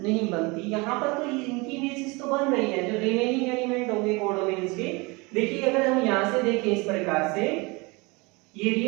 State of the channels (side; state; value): left; quieter; 26.2 dB